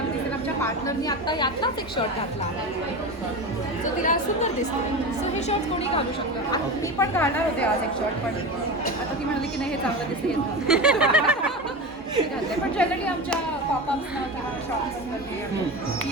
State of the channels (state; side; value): normal; both; correlation 0.25